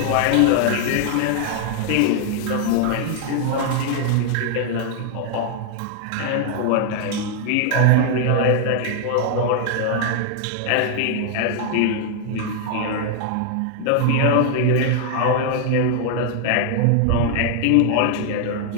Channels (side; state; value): both; different; correlation 0.00